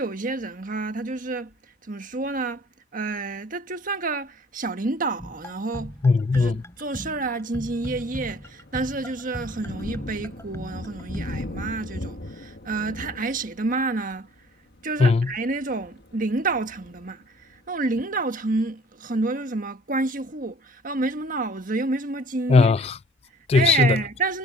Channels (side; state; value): both; normal; correlation 0.54